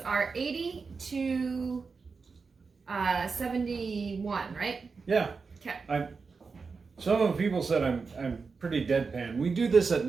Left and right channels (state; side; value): quieter; left; 4.8 dB